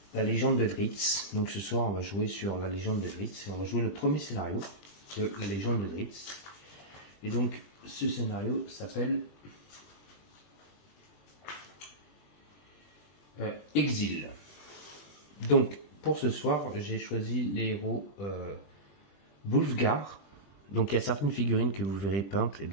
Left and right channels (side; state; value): right; late; 20 ms